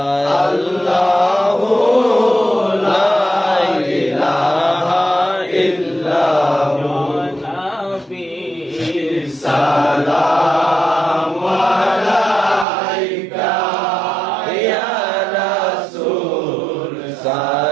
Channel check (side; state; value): left; drops out; at 12.7 s